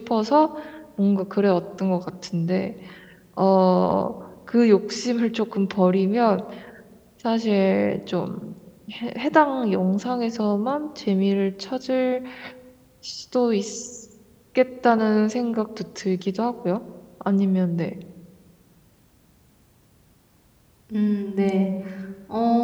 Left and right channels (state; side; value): identical; both; correlation 1.00